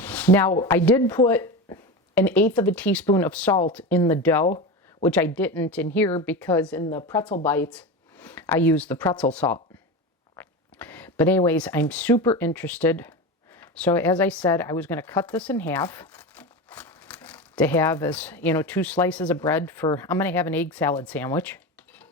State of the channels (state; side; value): normal; both; correlation 0.23